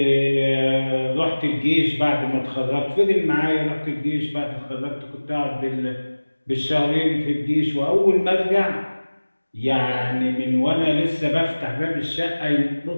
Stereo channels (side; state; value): both; inverted; correlation -1.00